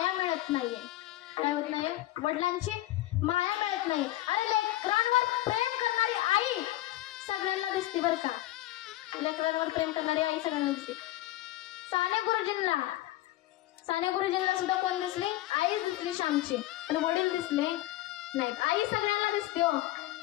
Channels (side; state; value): right; quieter; 15.9 dB